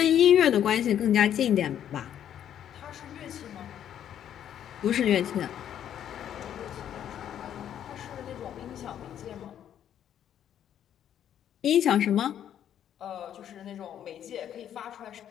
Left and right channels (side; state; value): right; quieter; 10.1 dB